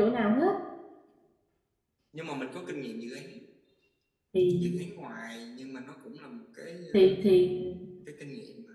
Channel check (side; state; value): both; identical; correlation 1.00